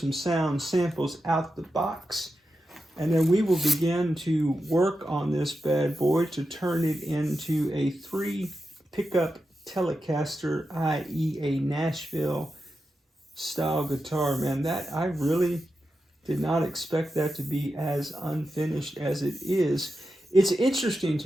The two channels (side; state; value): both; normal; correlation 0.89